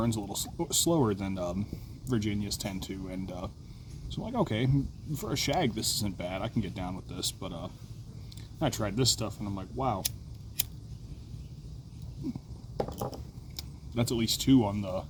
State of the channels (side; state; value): both; identical; correlation 1.00